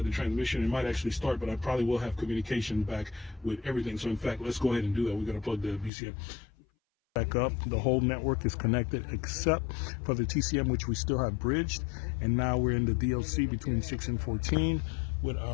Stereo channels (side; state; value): right; drops out; at 5.9 s